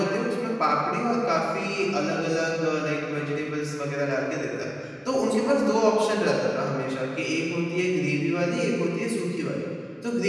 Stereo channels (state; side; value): identical; both; correlation 1.00